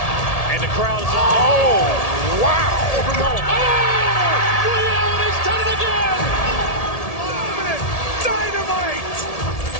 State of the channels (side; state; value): right; late; 1.7 ms